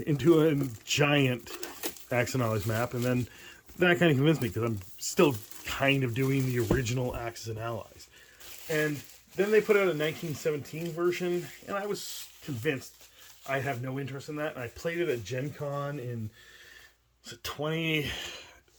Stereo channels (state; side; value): identical; both; correlation 1.00